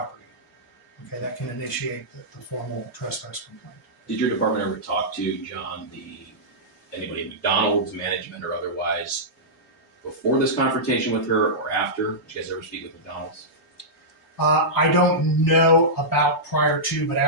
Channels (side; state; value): both; normal; correlation -0.13